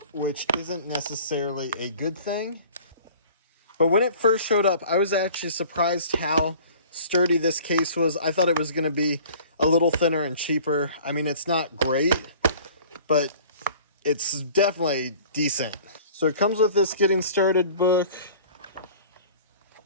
which isn't necessarily a good thing. But when it first showed up, I was actually surprised how sturdy this case was. I thought it was going to be a little thinner and cheaper. I mean, it's not great, but it's definitely decent. So it comes with this getting started book,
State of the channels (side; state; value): both; inverted; correlation -0.47